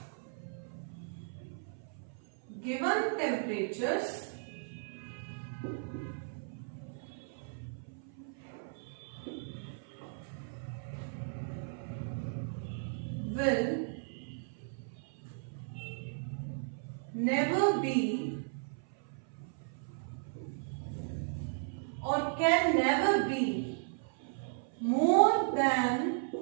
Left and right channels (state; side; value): silent; left; 54 dB below the other